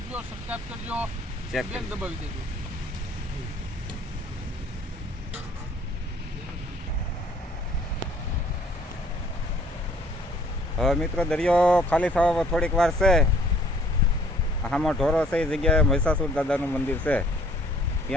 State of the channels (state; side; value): normal; both; correlation 0.58